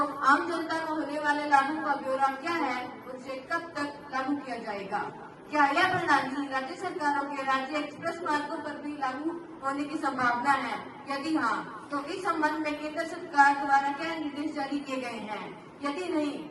आम जनता को होने वाले लाभों का ब्यौरा क्या है, उसे कब तक लागू किया जाएगा? क्या यह प्रणाली राज्य सरकारों के राज्य एक्सप्रेस मार्गों पर भी लागू होने की संभावना है? यदि हाँ, तो इस संबंध में केंद्र सरकार द्वारा क्या निर्देश जारी किए गए हैं? यदि नहीं,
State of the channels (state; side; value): identical; both; correlation 1.00